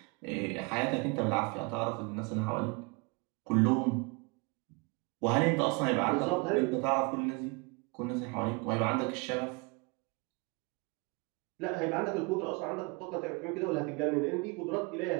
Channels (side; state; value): left; quieter; 29.3 dB